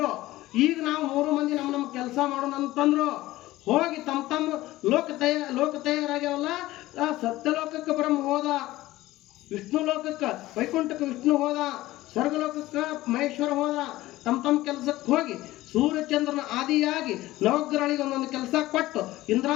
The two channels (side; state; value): right; quieter; 17.0 dB